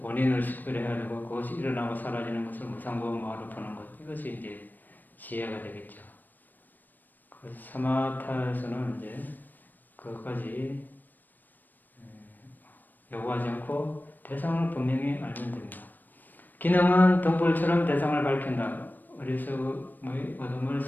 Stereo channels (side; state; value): right; late; 0.089 ms